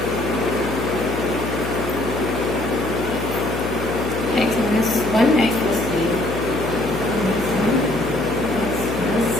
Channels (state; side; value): noise; left; hum, 7 dB below the sound